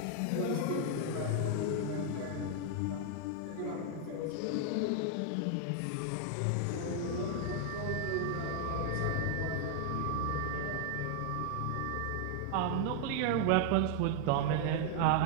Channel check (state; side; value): different; both; correlation 0.00